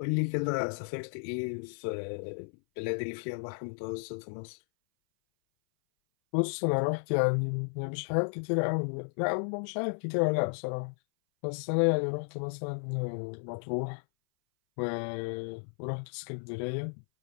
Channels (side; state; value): right; silent; 56 dB below the other